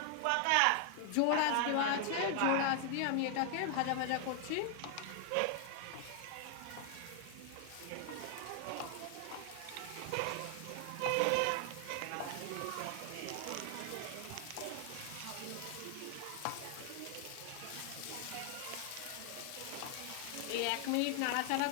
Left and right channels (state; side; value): different; both; correlation 0.00